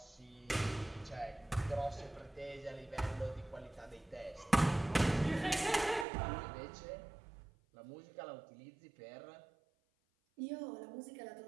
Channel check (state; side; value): drops out; left; at 6.1 s